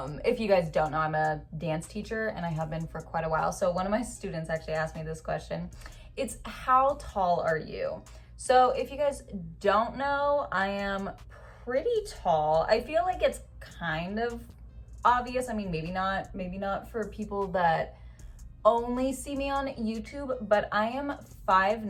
you guys don't know, I'm a dance teacher and I have been for quite a while. So one of my students actually asked me this question. It's, how tall are you? So if you guys don't know, I am pretty tall. I feel like it's kind of obvious. I mean, maybe not for people that only see me on YouTube, but I am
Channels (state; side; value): identical; both; correlation 1.00